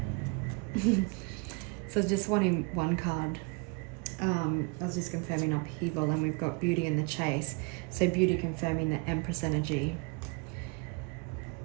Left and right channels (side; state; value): left; quieter; 30.0 dB